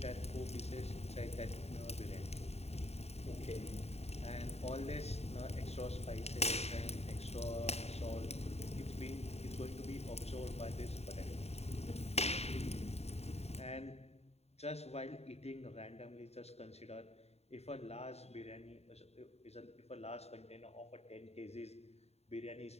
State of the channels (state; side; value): late; right; 0.30 ms